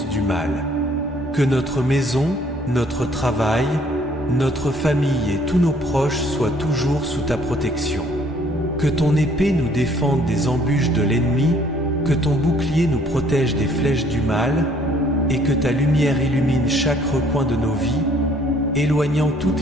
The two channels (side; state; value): both; normal; correlation 0.61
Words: du mal. Que notre maison, notre travail, notre famille et tous nos proches soient toujours sous ta protection. Que ton épée nous défende des embûches de l'ennemi, que ton bouclier nous protège des flèches du mal, et que ta lumière illumine chaque recoin de nos vies, éloignant